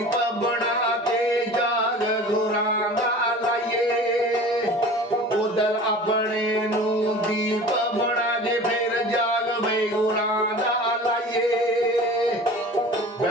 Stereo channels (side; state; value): both; normal; correlation 0.40